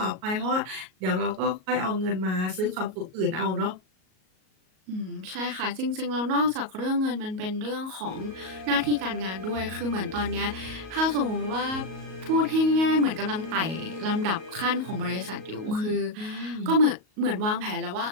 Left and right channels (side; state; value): left; late; 38 ms